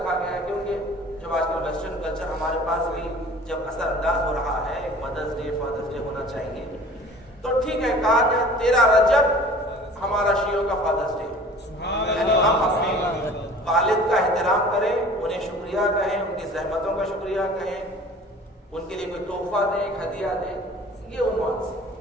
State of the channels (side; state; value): both; normal; correlation 0.45